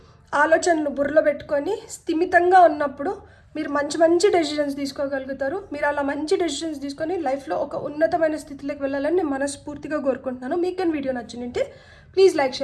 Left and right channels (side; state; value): both; identical; correlation 1.00